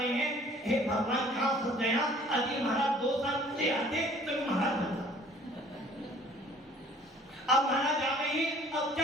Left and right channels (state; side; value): normal; both; correlation 0.54